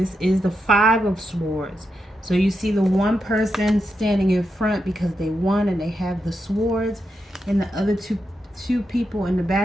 is the Five of Swords. So you see the one person standing in front because they won and they have the swords, and the other two people in the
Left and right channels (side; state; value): both; normal; correlation 0.85